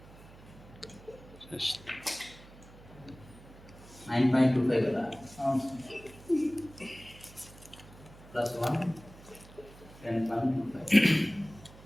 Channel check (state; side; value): noise; right; hum, 20 dB below the sound